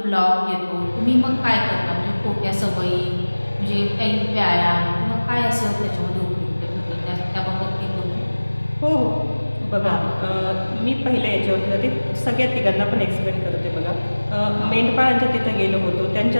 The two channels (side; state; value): both; inverted; correlation -1.00